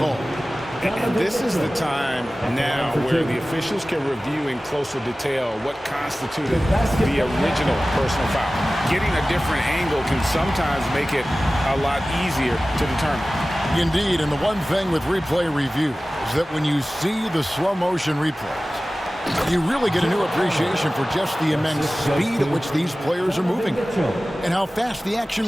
And this is the time now where the officials can review in closer detail what constituted the original personal foul. Getting a different angle can sometimes make it a lot easier to determine. Indeed, and the one thing with replay review is that when you see the slow motion replays, you really get a new appreciation for just the immense speed at which these players are moving and how fast the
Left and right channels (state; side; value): normal; both; correlation 0.97